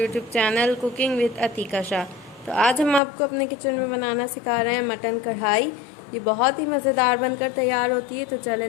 channel cooking with Atika Shah. तो आज हम आपको अपने किचन में बनाना सिखा रहे हैं मटन कढ़ाई। ये बहुत ही मज़ेदार बनकर तैयार होती है। तो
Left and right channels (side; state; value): right; drops out; at 3.0 s